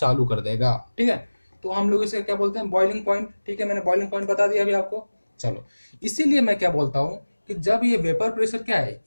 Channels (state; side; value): inverted; both; correlation -1.00